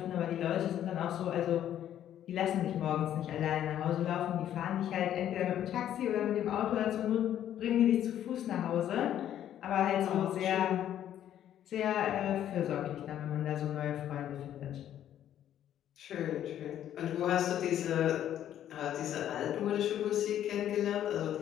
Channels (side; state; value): right; quieter; 11.0 dB